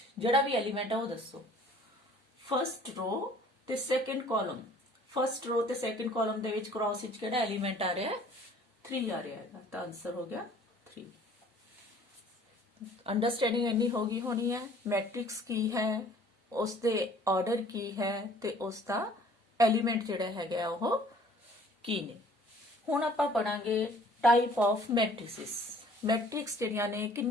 ਜਿਹੜਾ ਵੀ ਐਲੀਮੈਂਟ ਹੈ ਉਹ ਦੱਸੋ। फस्ट रो ते सेकंड कॉलम फस्ट रो ते सेकंड कॉलम दे विच क्रॉस विच केड़ा एलिमेंट आ रहा है 3 आ रहा है तो आंसर हो गया 3। अंडरस्टैंडिंग इन्नी होगी होनी है मैट्रिक्स की है उसके ऑर्डर की है ते उसका एलिमेंट जिहड़ा हैगा वो की ने। हुण आपां पढ़ांगे टाइप ऑफ मैट्रिसेस। मैट्रिक्स जिहड़ियां ने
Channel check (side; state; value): both; normal; correlation 0.54